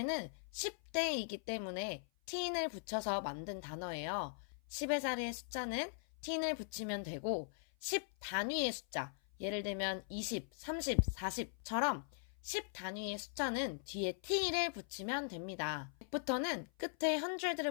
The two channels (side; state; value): right; silent; 51 dB below the other